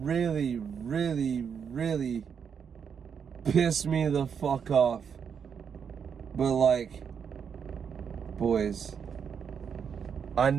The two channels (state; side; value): quieter; left; 7.0 dB